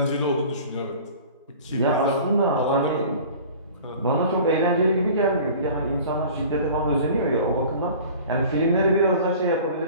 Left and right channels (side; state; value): both; inverted; correlation -0.43